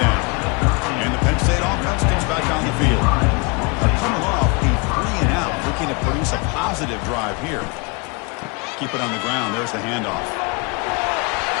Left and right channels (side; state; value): right; quieter; 30.2 dB